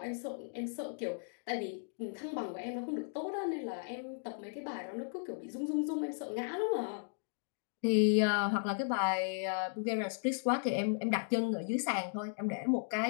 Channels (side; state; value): right; silent; digital silence